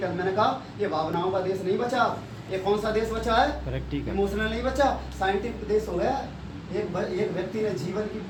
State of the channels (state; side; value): identical; both; correlation 1.00